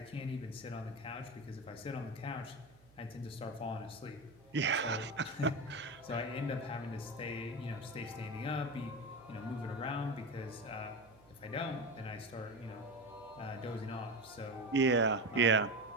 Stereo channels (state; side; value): noise; right; hum, 26 dB below the sound